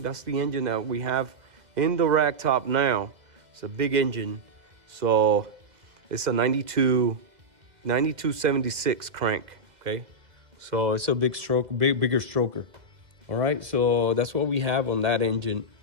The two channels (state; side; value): late; left; 2.0 ms